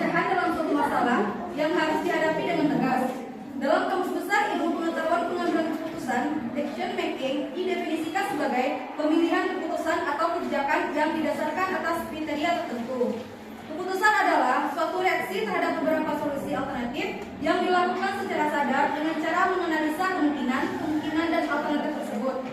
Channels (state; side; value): identical; both; correlation 1.00